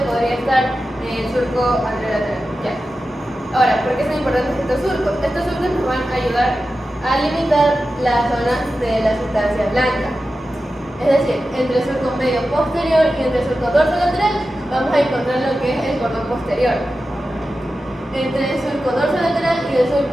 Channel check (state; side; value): normal; both; correlation 0.93